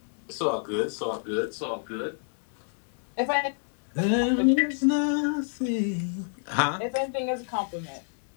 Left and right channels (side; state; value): right; silent; digital silence